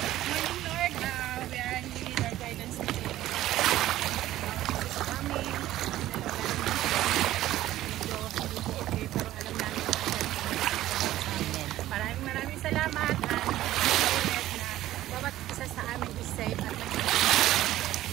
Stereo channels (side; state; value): left; quieter; 14.4 dB